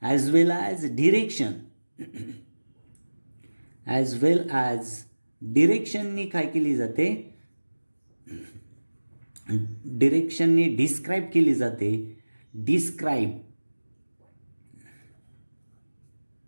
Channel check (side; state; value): both; inverted; correlation -1.00